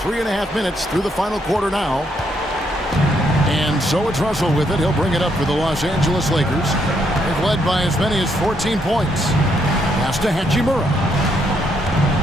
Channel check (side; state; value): both; normal; correlation 0.74